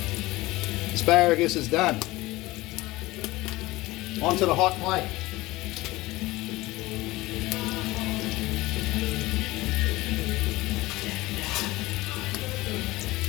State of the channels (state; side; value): quieter; right; 19.5 dB